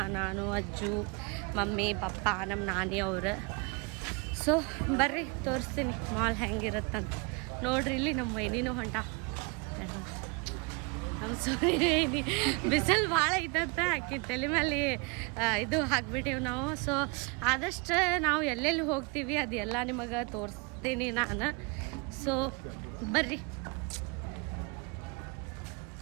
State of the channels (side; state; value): left; quieter; 30.3 dB